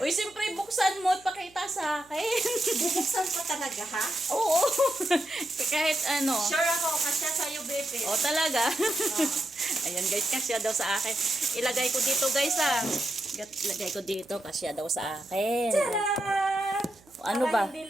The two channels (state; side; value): noise; right; hum, 28 dB below the sound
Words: siyempre buksan mo at pakita sa akin. Bubuksan pa talaga, ha? Oo. Kahit ano. Sure ako, kasya sa'yo, Bebe. O talaga. Ayan guys, kasya daw sa akin. Ilagay ko dito guys Ilagay ko dito, kasya daw sa akin. Tadaan! Ano ba? Para hindi